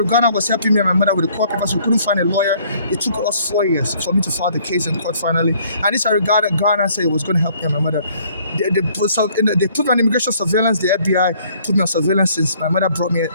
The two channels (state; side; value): inverted; both; correlation -0.61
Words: Ghana was helping me and my mother with the court papers. We couldn't find a lawyer. It took us 4 years for me to file the case in court finally. And this I regarded Ghana said it was going to help me and my mother. They put me on immigration surveillance. The FBI put me on surveillance since my mother brought me.